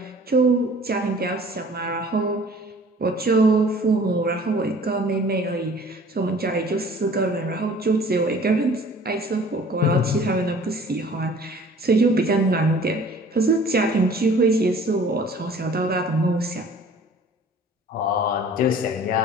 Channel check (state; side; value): normal; both; correlation 0.50